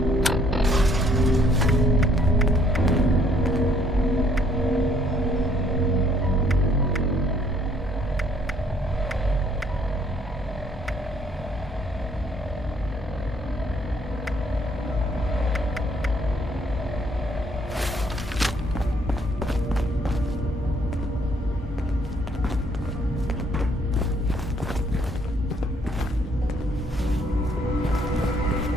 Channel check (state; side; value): normal; both; correlation 0.64